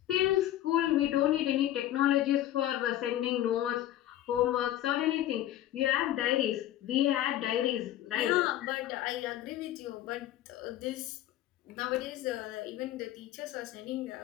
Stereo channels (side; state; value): right; quieter; 13.1 dB